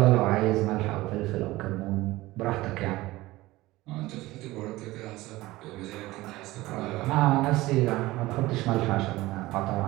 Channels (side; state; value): left; quieter; 18.7 dB